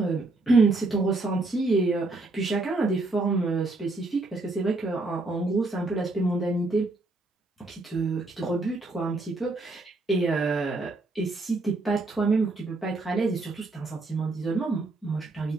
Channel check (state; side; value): quieter; left; 3.2 dB